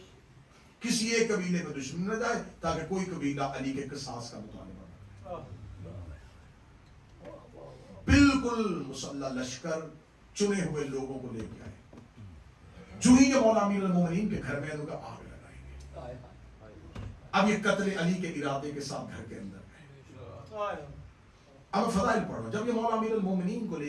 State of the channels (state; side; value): identical; both; correlation 1.00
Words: کسی ایک قبیلے میں دشمن نہ جائے تاکہ کوئی قبیلہ علی کے قصاص کا مطالبہ نہ کرے۔ بالکل مسلح لشکر چنے ہوئے لوگوں کو لے کے آئے، جو ہی جب مولا امیر المومنین کے گھر میں ان کا آگ لگائیں گے۔ اب یہ قتل علی کے ارادے کے ساتھ گھر کے اندر گئے۔ اب فضائل پڑھ رہا ہوں، جب یہ مولا امیر المومنین کو